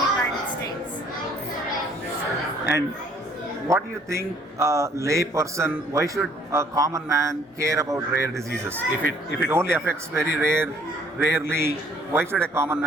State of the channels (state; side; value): normal; both; correlation 0.60